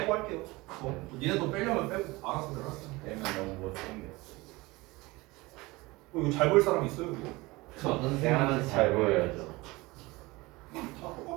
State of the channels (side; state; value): left; quieter; 22.1 dB